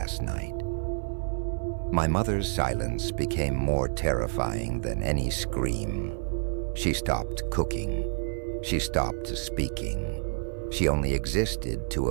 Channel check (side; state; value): left; silent; 55 dB below the other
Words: night. My mother's silence became more terrifying than any scream. She stopped cooking. She stopped speaking. She only existed to